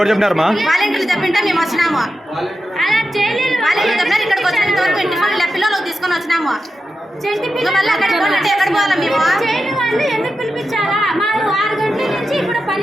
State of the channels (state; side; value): normal; both; correlation 0.89